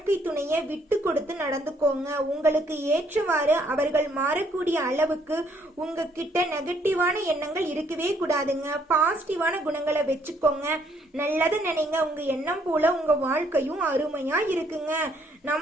துணையை விட்டு கொடுத்து நடந்துக்கோங்க. உங்களுக்கு ஏற்றவாறு அவர்கள் மாறக்கூடிய அளவுக்கு உங்ககிட்ட நெகட்டிவான எண்ணங்கள் இருக்கவே கூடாதுங்க. பாசிட்டிவான குணங்களை வச்சுக்கோங்க. நல்லது நினைங்க. உங்க எண்ணம் போல உங்க வாழ்க்கையும் அருமையா இருக்குங்க.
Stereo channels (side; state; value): both; normal; correlation 0.67